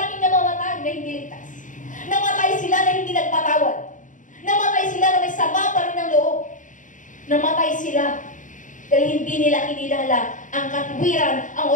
namamatay na hindi ligtas. Namatay sila na hindi nagpatawad. Namatay sila na may sama pa rin ng loob. Namatay sila dahil hindi nila kinilala ang katwiran, ang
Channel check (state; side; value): late; right; 0.37 ms